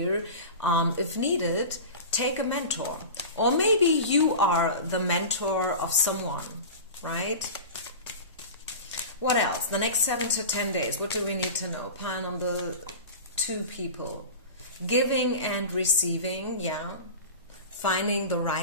If needed, take a mentor. Or maybe you are the mentor of someone, right? What else? The next 7 to 10 days, what do we need to know? Pile number two, people. Giving and receiving, yeah. Finding the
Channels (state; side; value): inverted; both; correlation -0.32